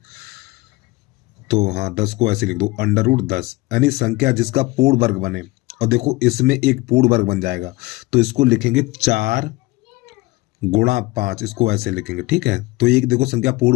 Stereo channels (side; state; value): right; quieter; 21.7 dB